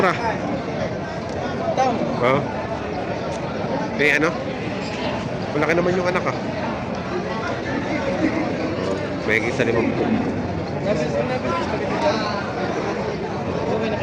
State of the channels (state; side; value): identical; both; correlation 1.00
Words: Tang. Oo. Eh, ano? Malaki naman yung anak, ah. May isa 50. Okay na